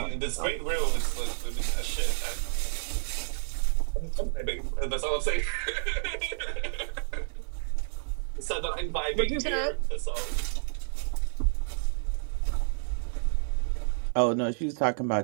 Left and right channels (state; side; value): silent; left; digital silence